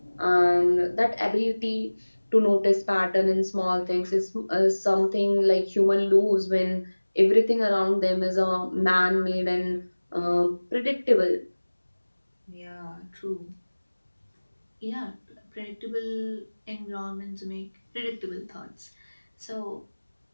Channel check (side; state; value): both; inverted; correlation -1.00